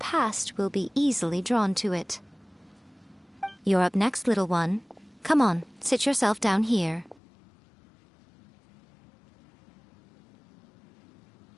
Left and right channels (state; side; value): drops out; right; at 7.2 s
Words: will be easily drawn to it. You're up next, little one. Come on, sit yourself down here.